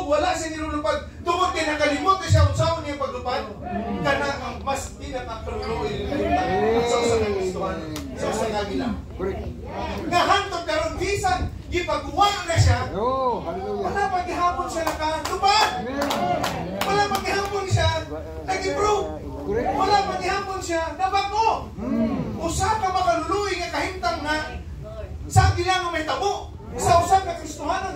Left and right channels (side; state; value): both; identical; correlation 1.00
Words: wala siya nilulupad, tungod kay nakalimot na siya unsaon niya paglupad, kana ang mas pinakakaluluoy sa usa nga Kristohan, sa usa nga gila. Nahantod karon bisan gipagawa na siya, wala pa gihapon siya nakalupad. Wala pa gihapon siya nag-improve. Wala pa gihapon siya nabago. Usa ka makaluluoy nga kahimtang na sa gila nga may tabo. Sa usa ka